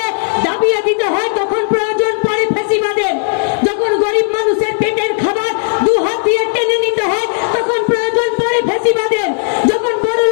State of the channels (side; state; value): right; silent; 64 dB below the other